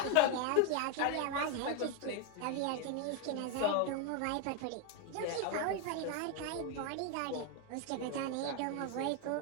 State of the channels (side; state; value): both; different; correlation 0.01